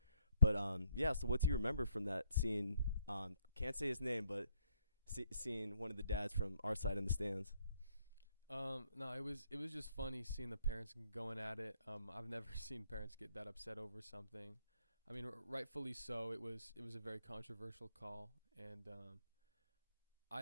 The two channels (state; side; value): inverted; both; correlation -0.68